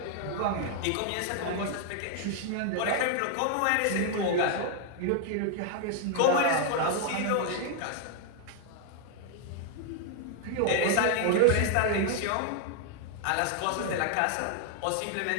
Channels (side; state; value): both; different; correlation 0.00